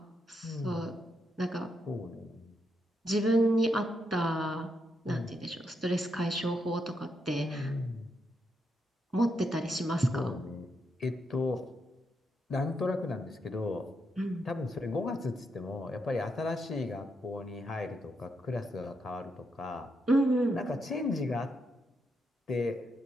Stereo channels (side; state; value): both; normal; correlation 0.81